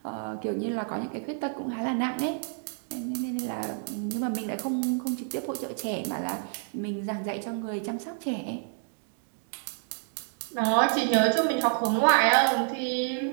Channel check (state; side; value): silent; left; 59 dB below the other